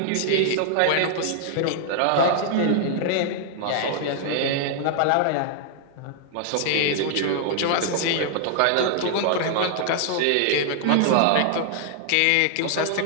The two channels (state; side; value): different; both; correlation -0.01